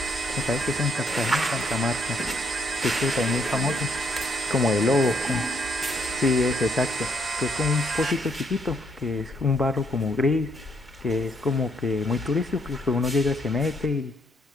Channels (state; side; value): normal; both; correlation 0.72